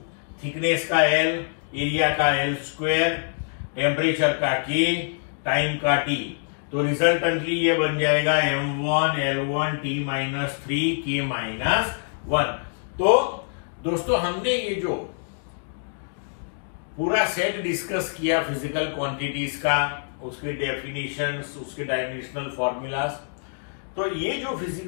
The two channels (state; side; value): silent; right; digital silence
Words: थिकनेस का L, एरिया का L², टेम्परेचर का K, टाइम का T। तो रिजल्टेंटली ये बन जाएगा m1 L1 T-3 K-1। तो दोस्तों हमने ये जो पूरा सेट डिस्कस किया फिजिकल क्वांटिटीज का, उसके डेफिनेशंस, उसके डायमेंशनल फॉर्मूलाज, तो ये जो